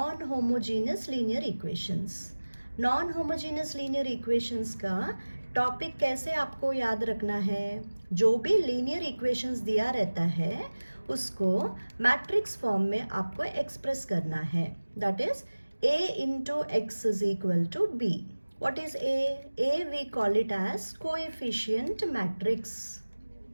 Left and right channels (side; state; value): both; inverted; correlation -1.00